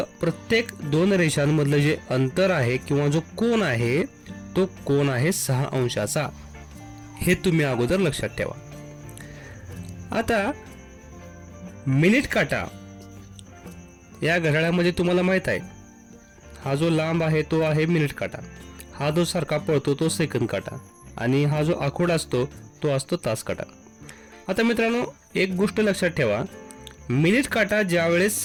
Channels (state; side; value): identical; both; correlation 1.00